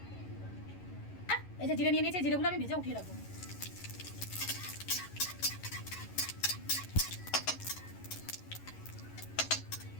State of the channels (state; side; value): late; right; 11 ms